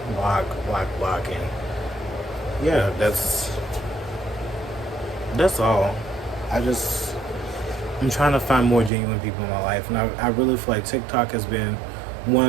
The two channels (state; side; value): drops out; left; at 8.9 s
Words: and yeah, that's all. I'm trying to find more genuine people in my life, and I really feel like TikTok has been one